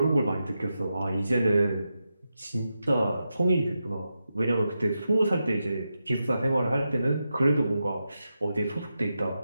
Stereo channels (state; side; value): inverted; both; correlation -0.88